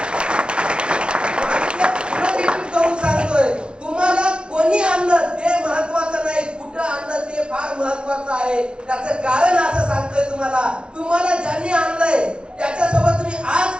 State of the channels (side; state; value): left; late; 0.053 ms